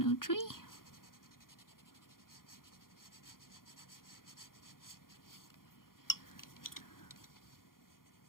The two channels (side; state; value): right; late; 0.91 ms